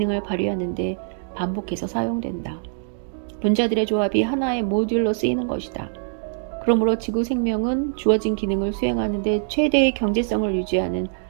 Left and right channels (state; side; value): silent; left; digital silence